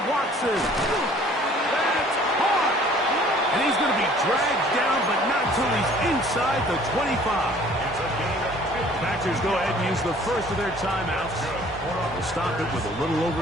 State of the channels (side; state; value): both; normal; correlation 0.54